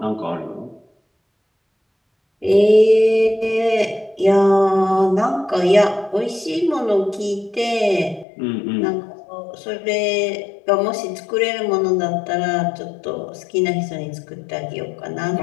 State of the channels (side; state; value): right; drops out; at 8.2 s